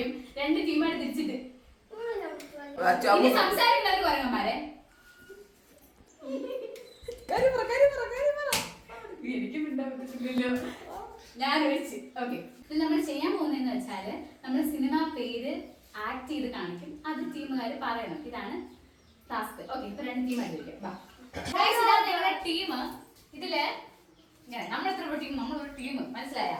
രണ്ട് ടീമായിട്ട് തിരിച്ചിട്ട് സംസാരിക്കുന്നവർക്ക് പറയന്മാരെ എനിക്ക് മിണ്ടാൻ പറ്റത്തില്ലല്ലോ. ഞാൻ ഒഴിച്ച്. ഓക്കെ, നമ്മൾ ചെയ്യാൻ പോകുന്നതെന്ന് വെച്ചാല് നമ്മൾ സിനിമ പേര് ആക്ട് ചെയ്ത് കാണിക്കും. അത് ടീമുകാർ പറയണം. ഇതാണ് ടാസ്ക്. ഓക്കെ, ഇപ്പൊ രണ്ട് ടീമായിട്ടിരിക്കും. ഞങ്ങളുടെ ടീം ഇതില് നമ്മളെത്ര ടീം, നമ്മളൊരു ടീം, മനസ്സിലായ?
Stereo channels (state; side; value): identical; both; correlation 1.00